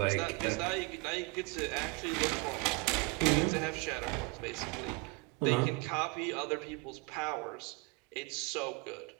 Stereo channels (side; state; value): left; quieter; 27.0 dB